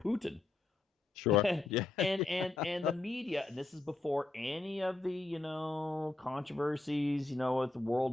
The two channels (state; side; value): quieter; right; 3.2 dB